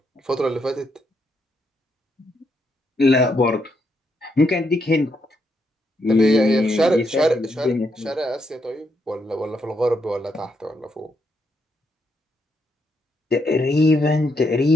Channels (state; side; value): normal; both; correlation 0.78